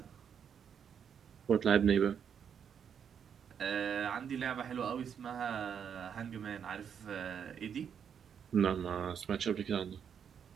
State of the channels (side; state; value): left; quieter; 7.7 dB